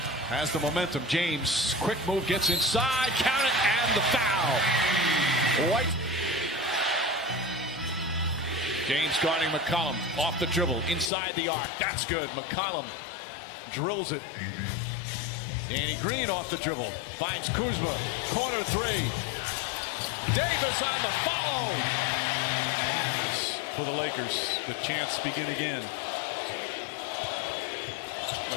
has the momentum. James, quick move, gets inside, count it, and the foul. White. James guarding McCollum, off the dribble, inside the arc. That's good. McCollum drills it. Danny Green off the dribble, finds Kuzma, corner 3. Davis on the follow. For the Lakers, the chance begin again.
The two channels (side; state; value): right; drops out; at 11.1 s